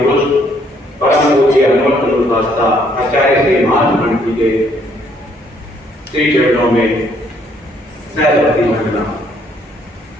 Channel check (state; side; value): normal; both; correlation 0.67